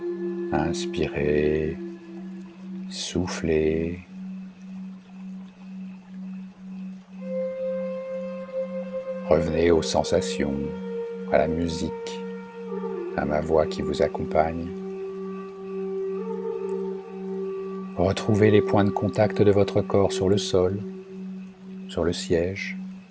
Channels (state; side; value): identical; both; correlation 1.00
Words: Inspirez, soufflez. Revenez aux sensations, à la musique, à ma voix qui vous accompagne. Retrouvez les points de contact de votre corps sur le sol, sur le siège.